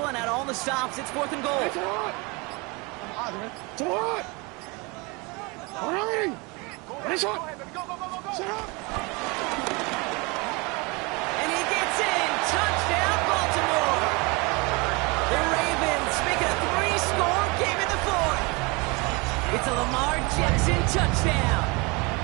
out all the stops. It's 4th and goal. It's a lot! Running! Ready, shot! Set up! And he gets in! Touchdown, Baltimore! The Ravens make it a 3-score game in the 4th. It's a Lamar Jackson touchdown.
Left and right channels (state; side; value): quieter; left; 27.6 dB